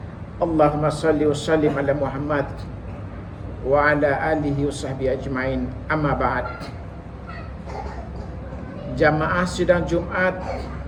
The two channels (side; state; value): both; identical; correlation 1.00